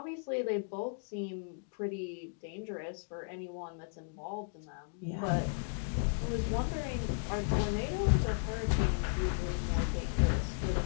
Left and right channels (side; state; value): right; silent; digital silence